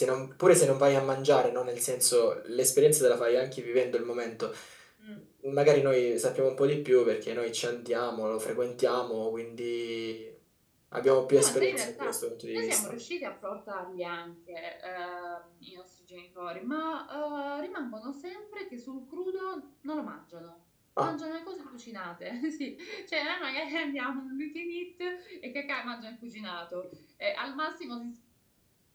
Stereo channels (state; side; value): identical; both; correlation 1.00